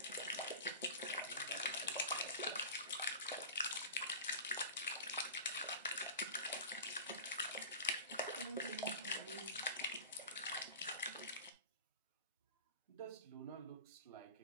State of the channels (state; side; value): inverted; both; correlation -0.33